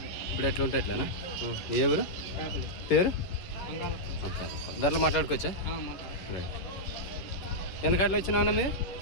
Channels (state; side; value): late; right; 11 ms